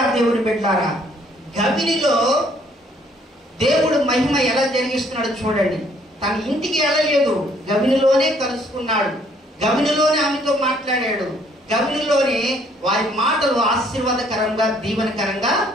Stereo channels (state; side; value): normal; both; correlation 0.64